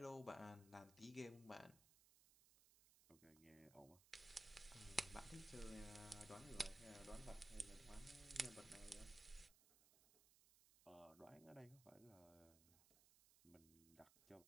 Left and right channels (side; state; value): right; noise; hiss, 21 dB below the sound